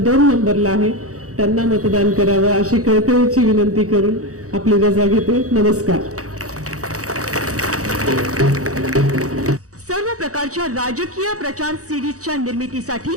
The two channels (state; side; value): late; left; 0.66 ms